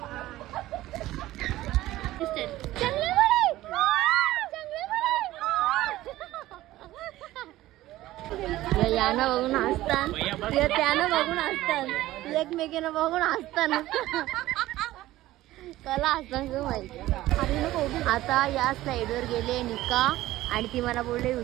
यानं बघून हसतात, त्यानं बघून हसतात, एकमेकीनं बघून हसतात. कला हसतात माहिती. आता या साईडवर गेले निका आणि ती मला बोलले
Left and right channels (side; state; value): left; quieter; 16.0 dB